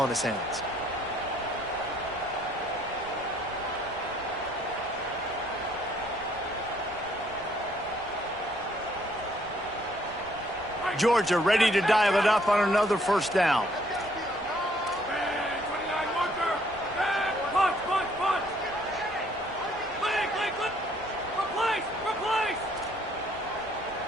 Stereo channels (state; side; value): noise; right; rumble, 21 dB below the sound